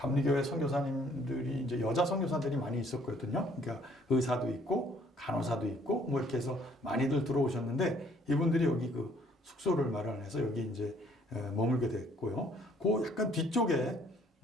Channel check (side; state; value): both; normal; correlation 0.62